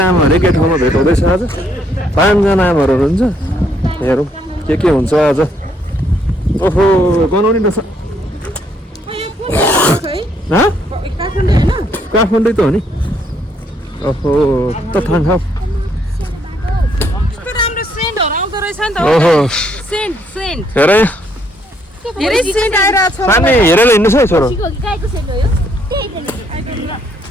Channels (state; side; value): normal; both; correlation 0.70